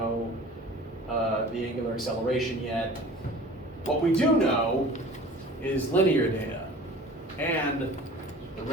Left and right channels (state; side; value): normal; both; correlation 0.43